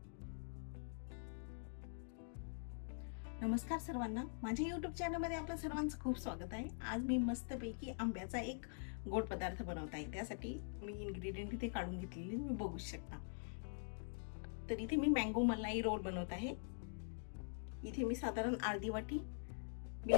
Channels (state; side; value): silent; right; digital silence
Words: नमस्कार सर्वांना, माझ्या यूट्यूब चॅनलमध्ये आपलं सर्वांचं खूप स्वागत आहे. आज मी मस्तपैकी आंब्याचा एक गोड पदार्थ बनवत आहे. त्यासाठी मी इन्ग्रेडियंट इथे काढून घेतलेले तुम्ही बघू शकता. तर इथे मी मँगो मलाई रोल बनवत आहे. इथे मी साधारण अर्धी वाटी